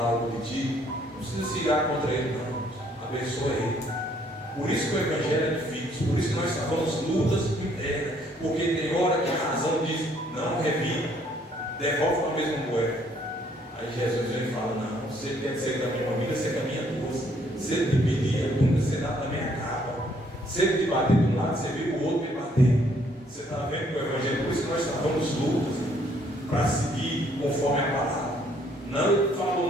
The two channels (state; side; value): normal; both; correlation 0.65